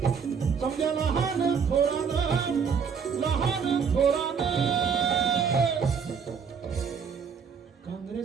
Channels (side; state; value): left; quieter; 6.4 dB